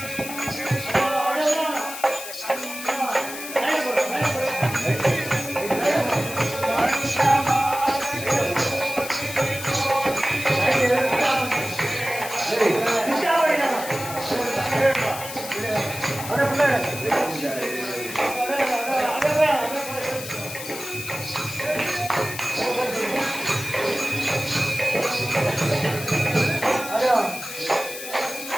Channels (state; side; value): noise; left; hiss, 10 dB below the sound